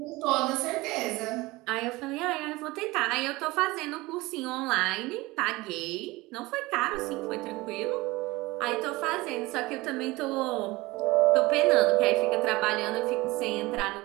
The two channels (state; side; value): quieter; left; 21.1 dB